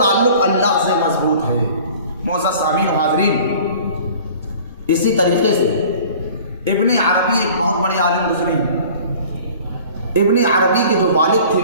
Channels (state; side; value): inverted; both; correlation -0.47